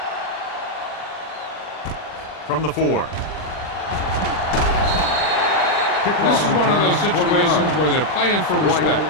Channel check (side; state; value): right; late; 39 ms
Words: From the 4. This is one of those situations where they're playing for respect.